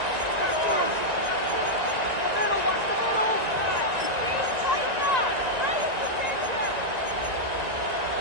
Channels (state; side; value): late; left; 1.9 ms